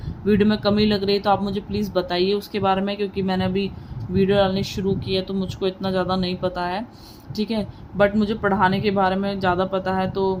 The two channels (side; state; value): both; identical; correlation 1.00